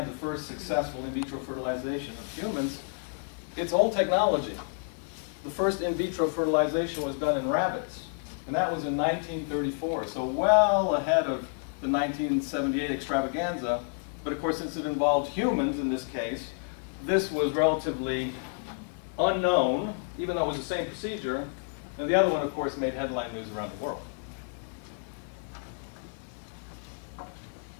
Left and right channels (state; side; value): silent; right; 58 dB below the other